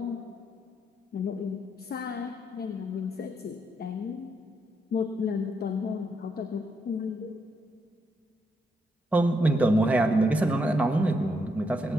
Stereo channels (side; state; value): both; normal; correlation 0.79